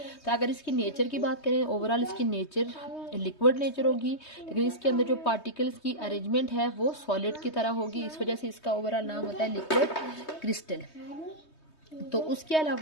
तो अगर इसकी नेचर की बात करें ओवरऑल इसकी नेचर लिक्विड नेचर होगी, लेकिन इसके अंदर जो पार्टिकल्स की अरेंजमेंट है वो सॉलिड की तरह होगी, इस वजह से इसका ओवरऑल नाम होता है लिक्विड क्रिस्टल। तो उसके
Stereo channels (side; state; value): right; late; 3.2 ms